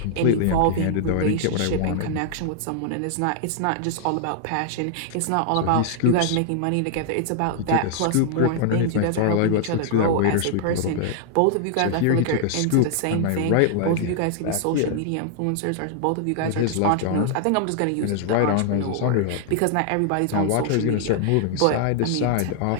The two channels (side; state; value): both; different; correlation 0.00